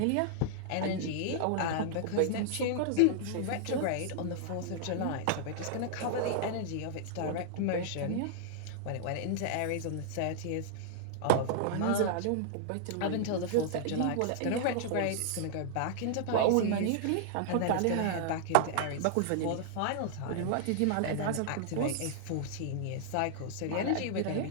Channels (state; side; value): different; both; correlation -0.01